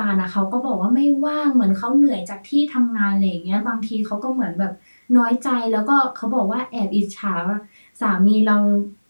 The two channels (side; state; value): both; inverted; correlation -1.00